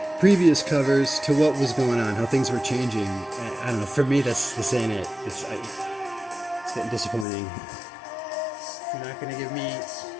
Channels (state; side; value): drops out; right; at 7.2 s